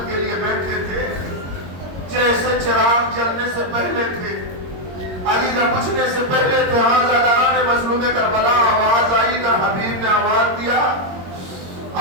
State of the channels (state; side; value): late; left; 22 ms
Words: کے لیے بیٹھے تھے جیسے چراغ جلنے سے پہلے تھے, علی نہ پوچھنے سے پہلے تھے. ہاں زاداران مظلوم کربلا, آواز آئی کہ حبیب نے آواز دیا,